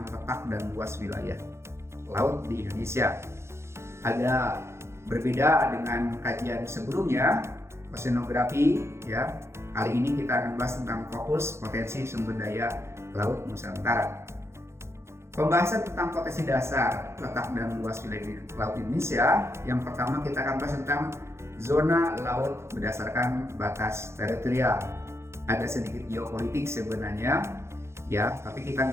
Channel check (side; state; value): left; late; 0.13 ms